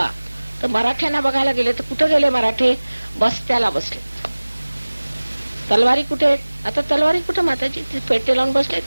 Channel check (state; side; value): inverted; both; correlation -1.00